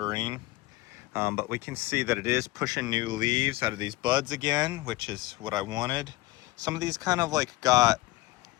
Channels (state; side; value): quieter; right; 19.6 dB